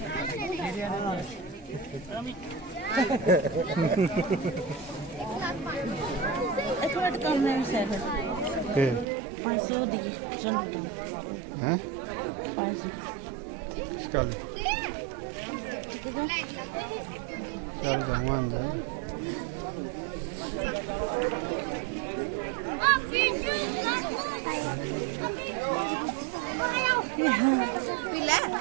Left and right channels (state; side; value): drops out; left; at 9.1 s